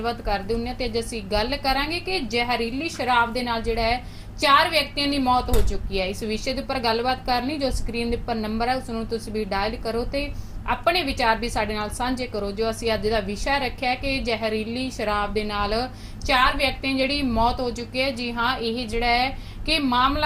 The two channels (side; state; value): both; identical; correlation 1.00